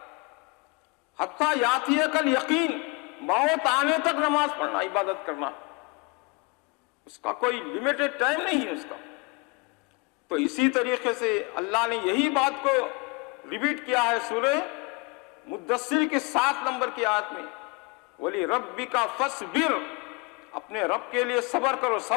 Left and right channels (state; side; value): quieter; right; 29.0 dB